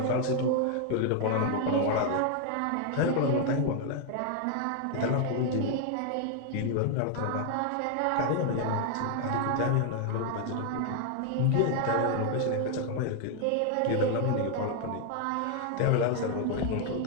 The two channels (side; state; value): both; different; correlation 0.00